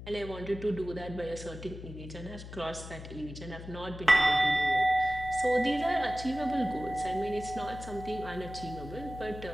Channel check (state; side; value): noise; left; hum, 12 dB below the sound